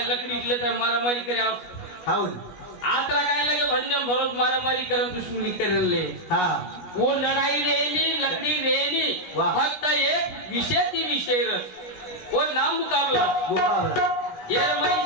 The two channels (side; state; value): right; late; 16 ms